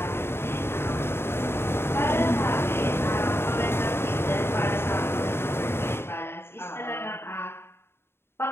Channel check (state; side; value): late; right; 0.11 ms